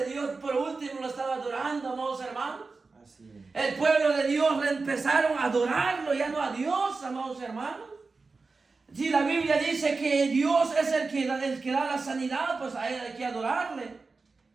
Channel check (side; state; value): left; quieter; 4.1 dB